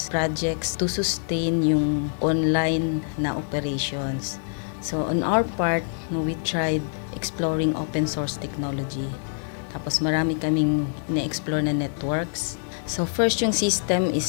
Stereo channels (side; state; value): right; silent; digital silence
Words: projects to sustain yung online na operations. So on our part, we tried exploring open source technology. Tapos marami kaming na-explore na networks. So first yung system